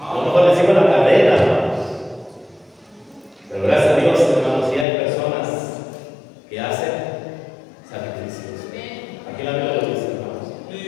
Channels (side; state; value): right; drops out; at 4.9 s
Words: A lo mejor les sigo la carrera, hermanos. Pero gracias a Dios, hermanos, sí hay personas que hacen sacrificios. Aquí la Biblia lo dice, hermanos.